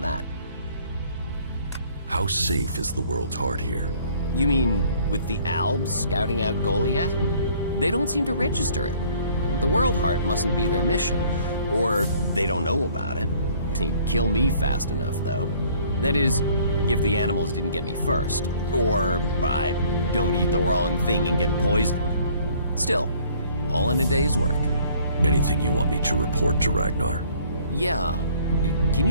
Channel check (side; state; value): both; inverted; correlation -0.57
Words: that. How safe is the world's heart here? You mean with the Albs scouting out Goliath? They don't seem to register it. The World Heart mustn't be their mission, or they don't know about it. They'd kill me fast enough, though. That is, if the animals didn't get me first, or I don't eat the wrong thing and get poisoned. Still, all in a day's work. Anything you want me to report to Ragnar? Yeah. Can